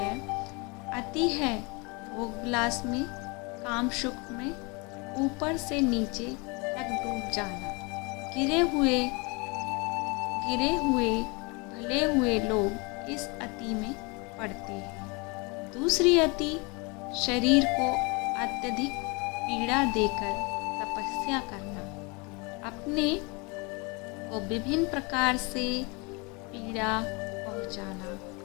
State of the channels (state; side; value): quieter; right; 29.1 dB